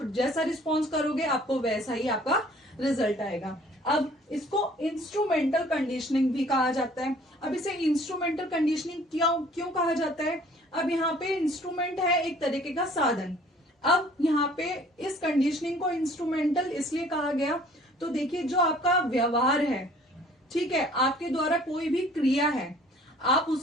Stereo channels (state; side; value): normal; both; correlation 0.54